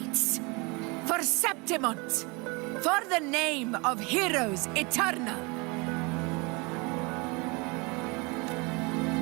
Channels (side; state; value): left; quieter; 28.0 dB